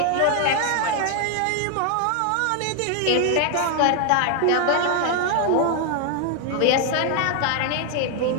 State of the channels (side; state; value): both; different; correlation 0.00